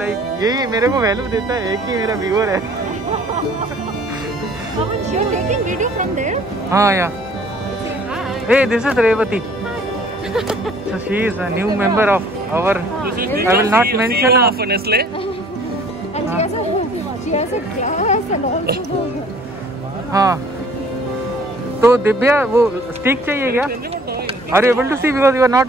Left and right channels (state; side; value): normal; both; correlation 0.54